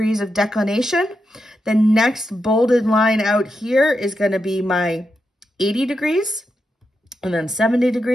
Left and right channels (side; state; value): both; normal; correlation 0.86